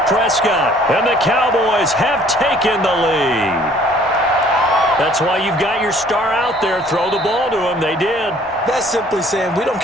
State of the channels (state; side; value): normal; both; correlation 0.57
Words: Prescott. And the Cowboys have taken the lead. That's why you've got your star out there. Throw the ball to him. They did. That's simply saying we don't